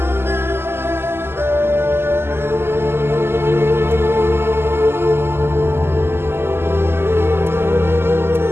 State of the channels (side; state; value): left; late; 0.12 ms